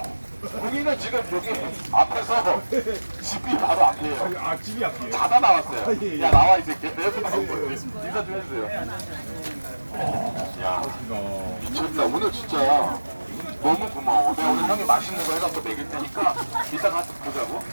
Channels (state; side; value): inverted; both; correlation -1.00